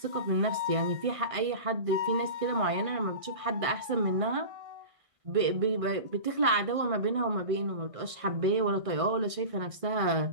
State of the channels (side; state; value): left; late; 1.6 ms